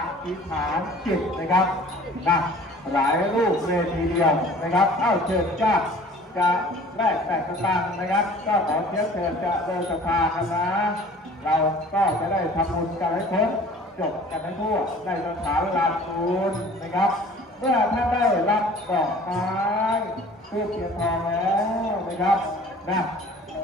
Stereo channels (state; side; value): normal; both; correlation 0.48